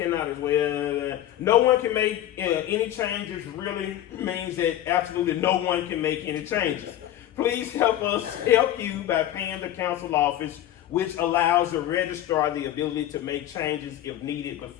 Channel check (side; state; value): right; quieter; 12.5 dB